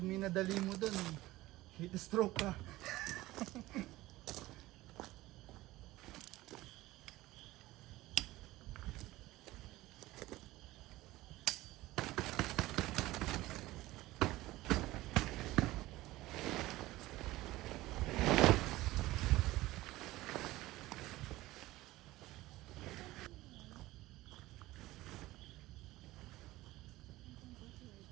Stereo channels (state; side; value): quieter; left; 17.9 dB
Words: mo dun, heat stroke ka.